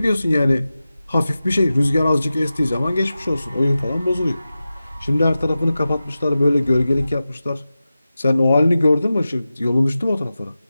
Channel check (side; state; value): both; inverted; correlation -0.94